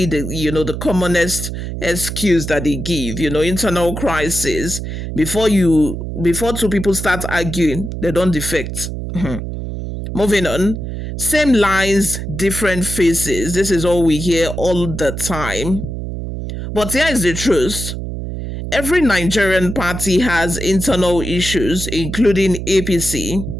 the commonest excuse that they give. Internal crisis. Before two people start arguing, they don't defect. Moving on. Same lines, different faces. This is all we hear all the time. But here is the truth. Every Nigerian party has internal issues, including APC.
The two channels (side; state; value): right; noise; hum, 6 dB below the sound